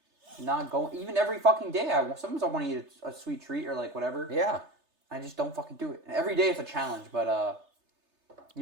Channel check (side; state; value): left; late; 3.3 ms